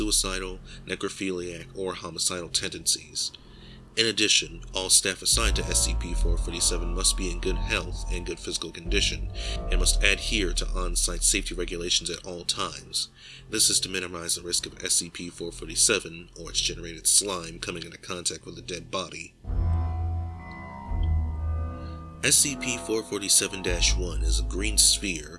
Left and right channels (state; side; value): identical; both; correlation 1.00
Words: necrophiliac, or homicidal tendencies. In addition, all staff assigned to SCP-447 must be in good health and good physical condition, and must adhere to on-site safety regulations at all times. This is to minimize the risk of SCP-447 or its generated slime coming into contact with a dead body. SCP-447-1 is a green sphere,